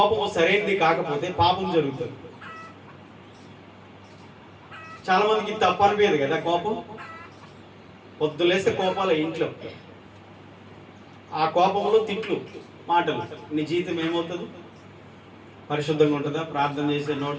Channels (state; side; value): identical; both; correlation 1.00